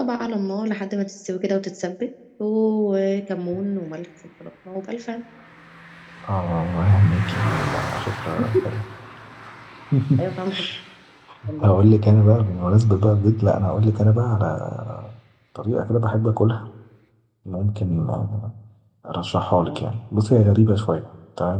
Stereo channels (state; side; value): identical; both; correlation 1.00